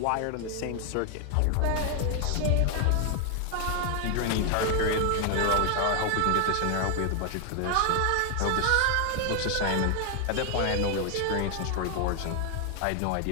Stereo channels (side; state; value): both; different; correlation 0.00